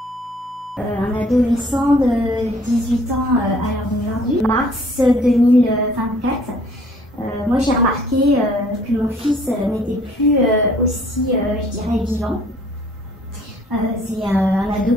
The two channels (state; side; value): normal; both; correlation 0.57